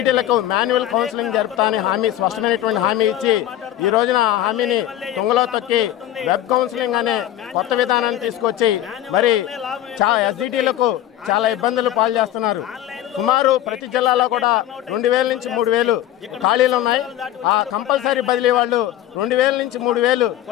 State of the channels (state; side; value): quieter; right; 12.7 dB